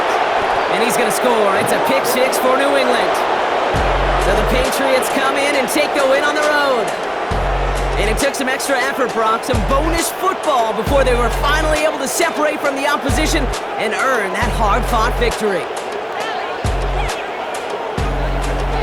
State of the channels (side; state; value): both; identical; correlation 1.00